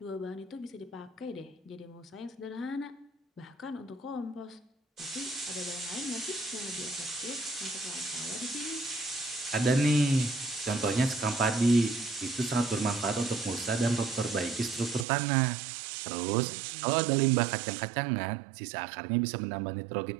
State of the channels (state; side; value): drops out; left; at 15.1 s